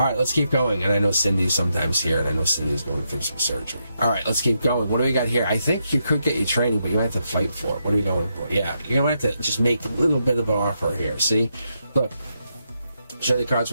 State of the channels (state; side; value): inverted; both; correlation -0.82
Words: right, let's keep going. And I know Cindy's sometimes here, and I know Cindy's going through some surgery. All right, let's keep going. What do we got here? I think you could get your training, but you might have to fight for it. What are we going for? Yeah, you're going to have to just make a little bit of an offer here. See? Look, show the cards